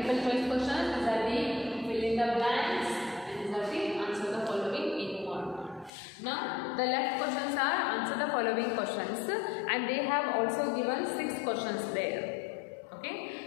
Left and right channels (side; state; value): right; drops out; at 5.9 s